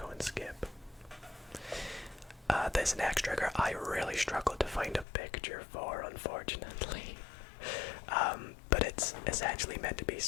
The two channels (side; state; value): right; drops out; at 5.1 s